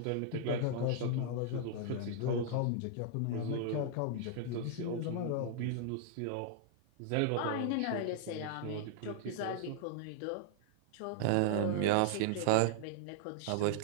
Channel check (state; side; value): different; both; correlation -0.01